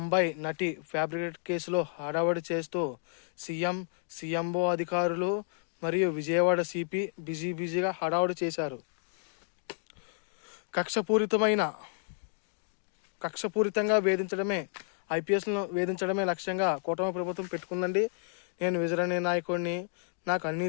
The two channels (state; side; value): silent; right; digital silence